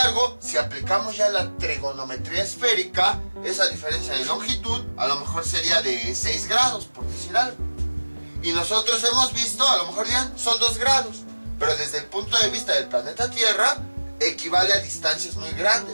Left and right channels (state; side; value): inverted; both; correlation -1.00